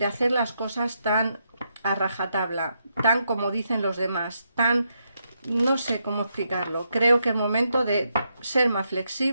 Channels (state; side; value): inverted; both; correlation -0.80